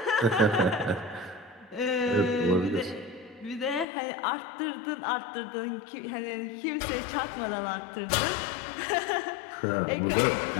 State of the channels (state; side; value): drops out; right; at 3.9 s